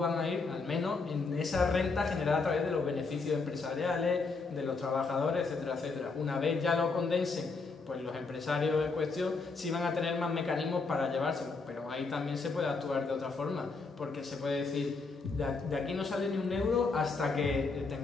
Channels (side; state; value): right; quieter; 4.2 dB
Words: a ir, al menos en esa renta generada a través de los beneficios empresariales, de los trabajadores, etcétera, etcétera. Una vez ya lo condensen, pues los empresarios en cuestión sí van a tener más mecanismos para llevárselo, pero ahí también se puede actuar de otra forma, porque se puede decir, de aquí no sale ni un euro hasta que